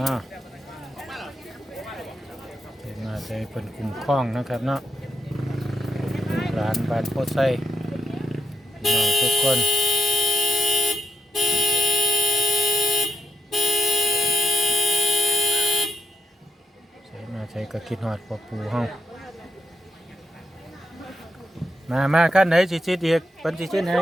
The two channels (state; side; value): normal; both; correlation 0.81